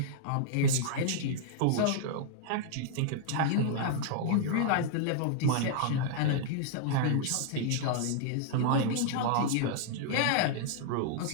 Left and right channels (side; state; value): both; different; correlation -0.01